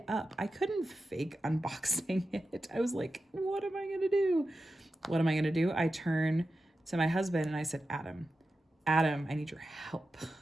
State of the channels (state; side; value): normal; both; correlation 0.91